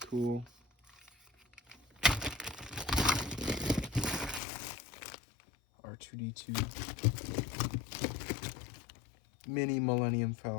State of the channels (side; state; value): right; drops out; at 4.4 s